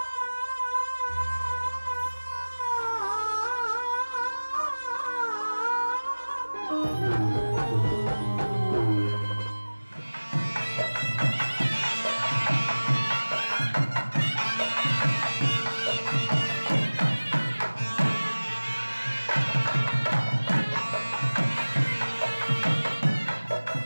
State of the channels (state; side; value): inverted; both; correlation -1.00